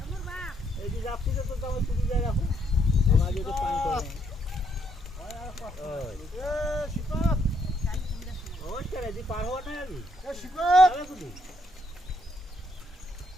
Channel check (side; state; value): both; normal; correlation 0.72